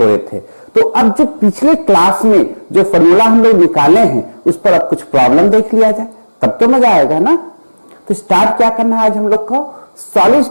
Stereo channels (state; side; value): inverted; both; correlation -1.00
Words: थे। तो अब जो पिछले क्लास में जो फॉर्मूला हम लोग निकाले हैं उस पर अब कुछ प्रॉब्लम देख लिया जाए, तब तो मजा आएगा ना। तो स्टार्ट क्या करना है आज हम लोग को? सॉलिड